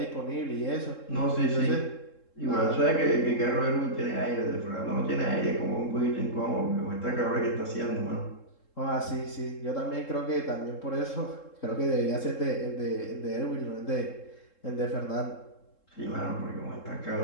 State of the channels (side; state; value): right; late; 3.7 ms